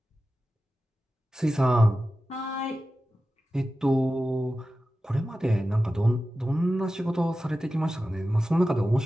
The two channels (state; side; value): normal; both; correlation 0.94